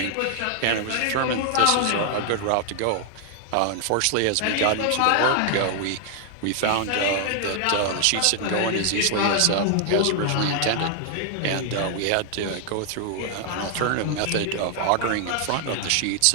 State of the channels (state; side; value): different; both; correlation 0.00